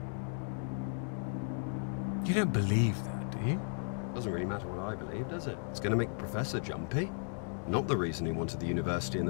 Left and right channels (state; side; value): silent; right; 54 dB below the other